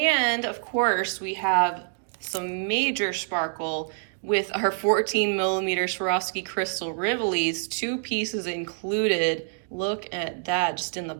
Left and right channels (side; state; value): left; silent; digital silence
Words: of course, we have some major sparkle with our 14mm Swarovski Crystal Rivolis, 2 pieces included. Look at that, just in the